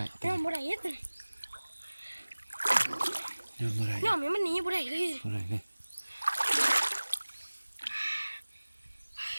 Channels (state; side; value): inverted; both; correlation -1.00